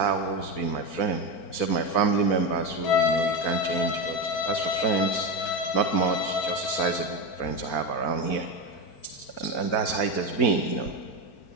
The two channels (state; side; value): late; right; 4.4 ms